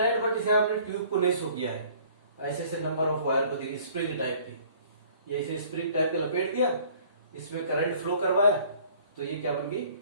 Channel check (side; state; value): both; inverted; correlation -0.54